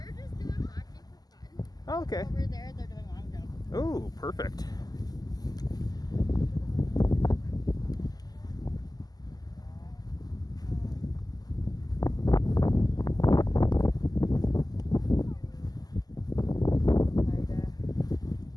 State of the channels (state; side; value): late; right; 0.19 ms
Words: just doing hockey for fun. Oh, okay. Over there, they're doing long jump. Oh, perfect.